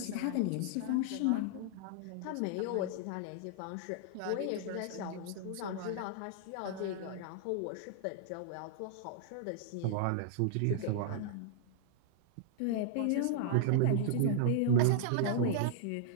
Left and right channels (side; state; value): both; different; correlation -0.01